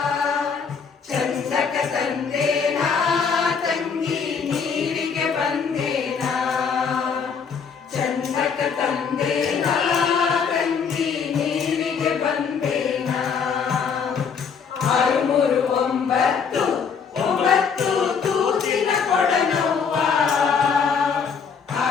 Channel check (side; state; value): right; quieter; 6.2 dB